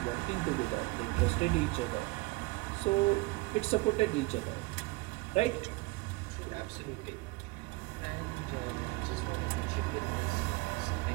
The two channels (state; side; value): quieter; left; 23.7 dB